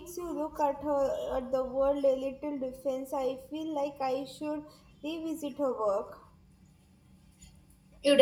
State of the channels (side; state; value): both; identical; correlation 1.00